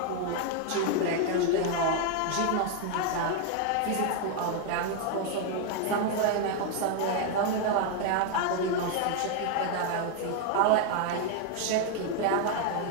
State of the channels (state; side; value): different; both; correlation 0.00